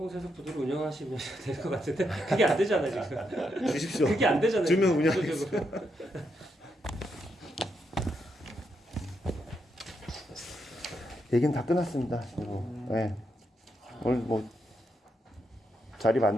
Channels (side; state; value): both; normal; correlation 0.81